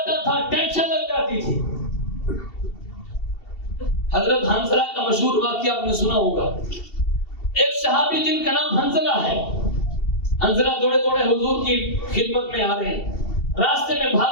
تھا ٹینشن لگ جاتی تھی۔ حضرت حنظلہ کا مشہور واقعہ آپ نے سنا ہوگا، ایک صحابی جن کا نام حنظلہ ہے، حنظلہ دوڑے دوڑے حضور کی خدمت میں آ رہے ہیں، راستے میں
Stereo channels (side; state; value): right; late; 2.7 ms